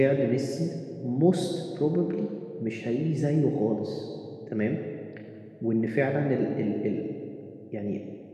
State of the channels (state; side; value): identical; both; correlation 1.00